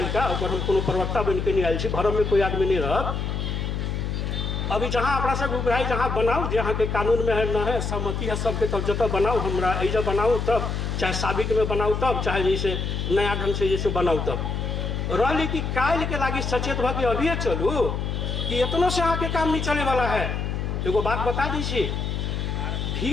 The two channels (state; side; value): noise; left; hum, 2 dB below the sound